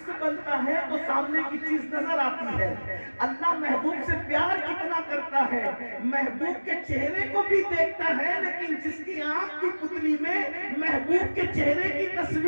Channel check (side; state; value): both; inverted; correlation -1.00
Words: بنتا ہے تو سامنے کی چیز نظر آتی ہے. اللہ محبوب سے پیار کتنا کرتا ہے، محبوب کے چہرے کو بھی دیکھتا ہے، لیکن جس کی آنکھ کی پتلی میں محبوب کے چہرے کی